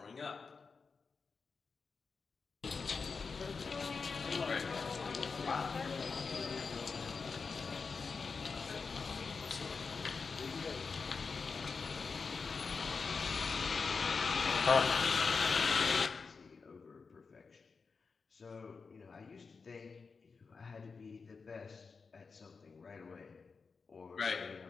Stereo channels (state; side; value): quieter; right; 4.9 dB